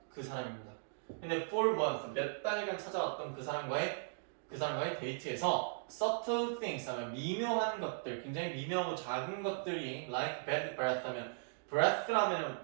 그 사람입니다. 근데 for months 몇 달간 찾아왔던 그 사람과의 데이트에서 subtle things 하면 미묘한 것들, 굉장히 미묘하고 작은 것들이 like bad breath 하면 breath라면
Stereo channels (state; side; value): silent; left; digital silence